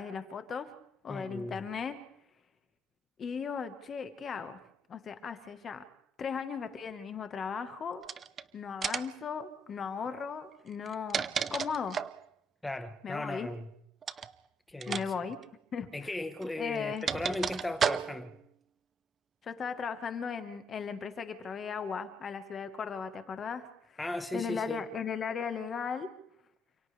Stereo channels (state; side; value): normal; both; correlation 0.75